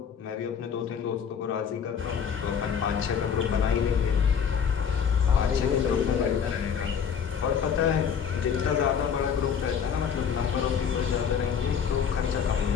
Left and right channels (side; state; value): right; quieter; 7.3 dB